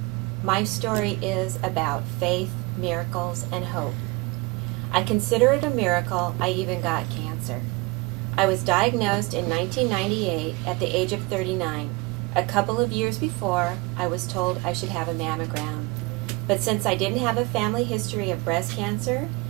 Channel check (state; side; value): quieter; left; 24.9 dB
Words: My story is about faith, miracles, and hope. I consider it a miracle I even got cancer. I was diagnosed in 1998 at the age of 39. A couple of years before, I was told I should have a mammogram. But since I didn't have a family history of breast cancer,